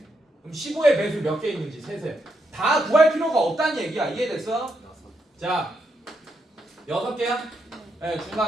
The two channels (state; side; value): normal; both; correlation 0.80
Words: 그럼 15의 배수 몇 개 있는지 세세요. 다 구할 필요가 없다는 얘기야. 이해됐어? 자, 6개야? 네,